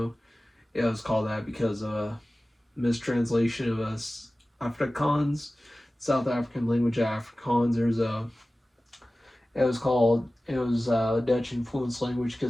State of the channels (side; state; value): both; normal; correlation 0.96